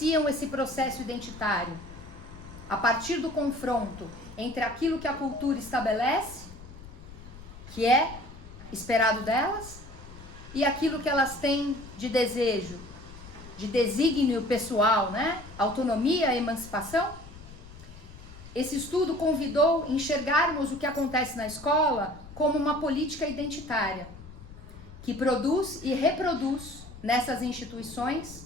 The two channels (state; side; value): noise; left; rumble, 17 dB below the sound